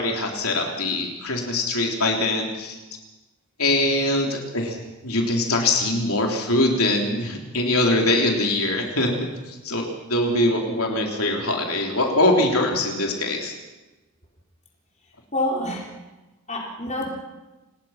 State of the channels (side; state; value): both; normal; correlation 0.12